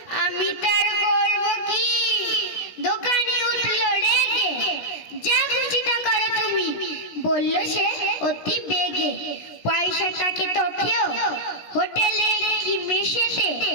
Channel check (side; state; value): right; late; 16 ms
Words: আমি তার করব কি? দোকানি উঠল রেগে, যা খুশি তা করো তুমি, বলল সে অতি বেগে। পয়সাটাকে তো খেও হোটেলে কি মেশেতে,